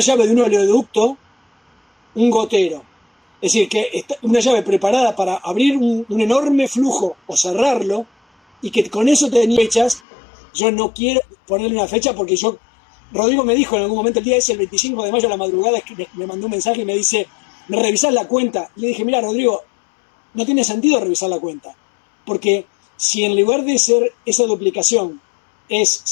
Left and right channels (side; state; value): right; drops out; at 10.0 s